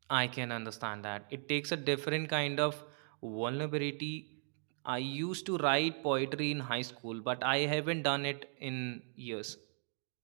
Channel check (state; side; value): silent; left; 53 dB below the other